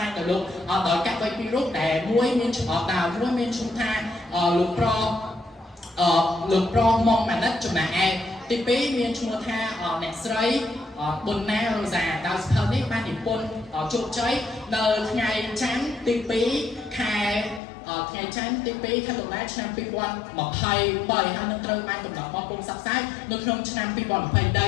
ែងដោយលោកដោយកវីពីររូបដែលមួយមានឈ្មោះមួយមានឈ្មោះថាលោកប្រមុំម៉ាណិតចំណែកឯទី2មានឈ្មោះថាអ្នកស្រីប៊ុនណារ៉ូសាដោយសភៅនេះបាននិពន្ធជោគជ័យនៅថ្ងៃច័ន្ទទី2ខែថ្ងៃច័ន្ទទី2ខែតុលាឆ្នាំ2023ហើយនឹងត្រូវបានកំណត់បោះពុម្ពផ្សព្វផ្សាយនៅក្នុងឆ្នាំ2023នេះផងដែ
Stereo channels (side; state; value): right; drops out; at 17.6 s